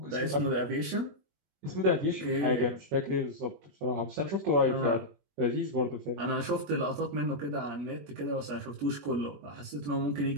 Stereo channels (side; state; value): left; late; 21 ms